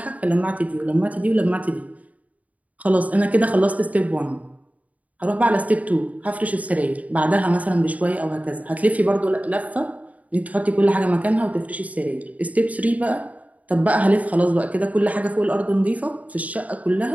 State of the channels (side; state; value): left; late; 0.071 ms